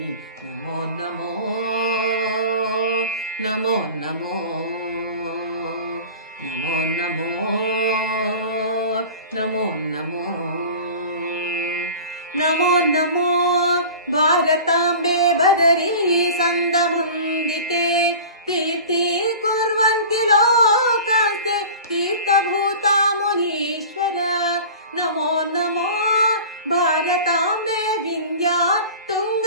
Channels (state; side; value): inverted; both; correlation -0.38